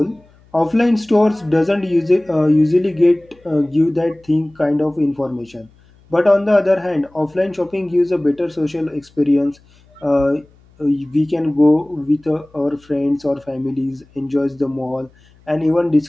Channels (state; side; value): noise; left; hum, 30 dB below the sound